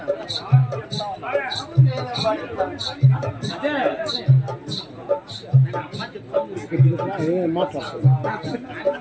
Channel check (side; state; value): both; identical; correlation 1.00